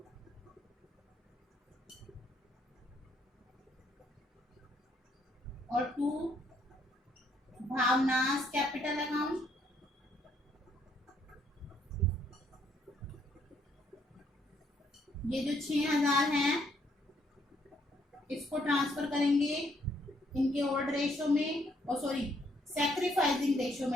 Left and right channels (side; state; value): both; normal; correlation 0.70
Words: और टू भावनास कैपिटल अकाउंट। ये जो 6,000 है इसको ट्रांसफर करेंगे इनके ओल्ड रेशो में, और सॉरी सैक्रिफाइसिंग रेशो